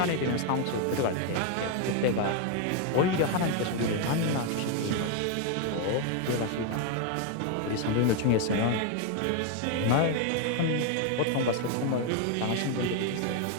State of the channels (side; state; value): both; different; correlation 0.01